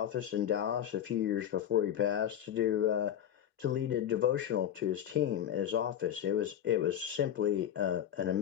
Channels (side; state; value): right; quieter; 10.2 dB